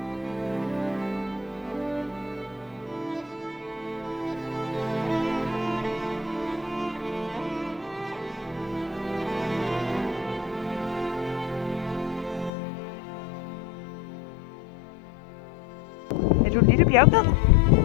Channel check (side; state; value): right; drops out; at 12.5 s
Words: Er du en lille bjergbed? Det